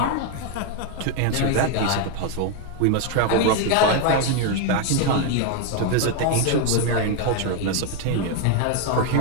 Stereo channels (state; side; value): different; both; correlation 0.01